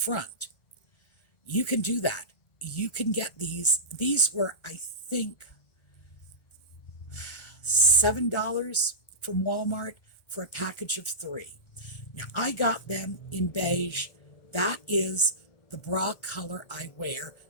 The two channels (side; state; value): right; late; 1.3 ms